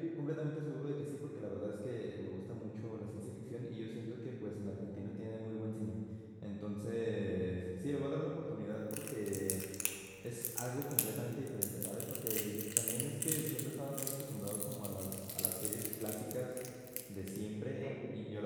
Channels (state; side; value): identical; both; correlation 1.00